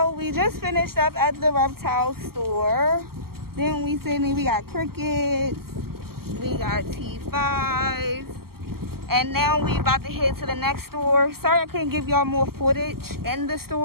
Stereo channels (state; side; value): late; left; 0.94 ms